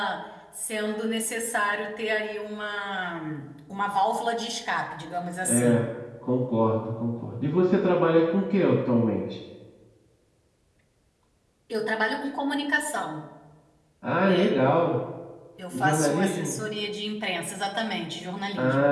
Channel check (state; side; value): identical; both; correlation 1.00